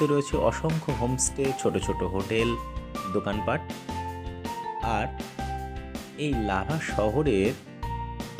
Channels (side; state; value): both; identical; correlation 1.00